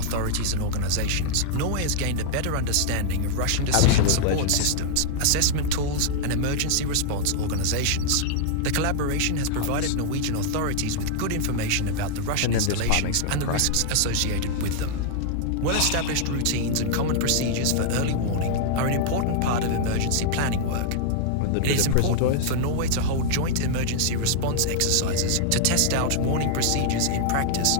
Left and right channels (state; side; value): different; both; correlation -0.01